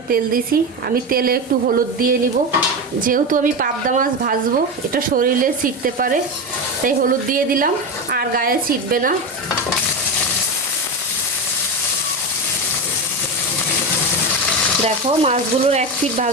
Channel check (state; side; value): normal; both; correlation 0.17